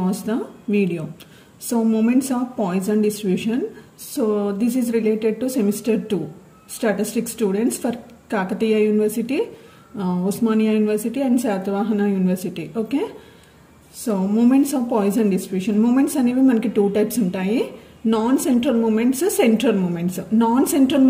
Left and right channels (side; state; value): both; identical; correlation 1.00